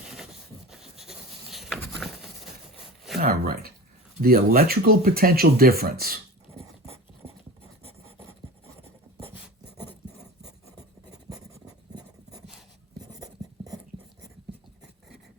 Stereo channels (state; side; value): normal; both; correlation 0.34